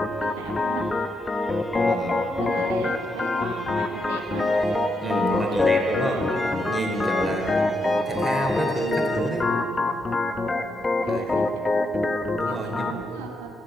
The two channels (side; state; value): both; normal; correlation 0.81